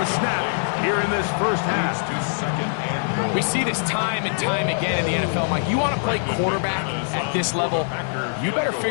snap here in this first half. We see this time and time again in the NFL, Mike. You want to play quarterback at this level, you better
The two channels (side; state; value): right; silent; digital silence